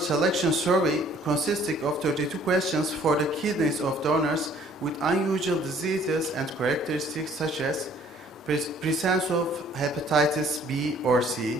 survey consisting of 32 questions for the kidneys of donors with unusual diseases and characteristics such as presence of hepatitis B or C,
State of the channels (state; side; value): normal; both; correlation 0.58